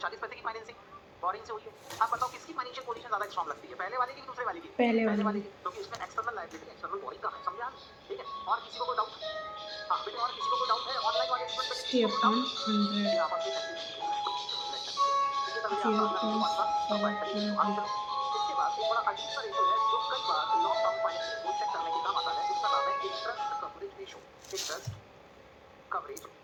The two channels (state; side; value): identical; both; correlation 1.00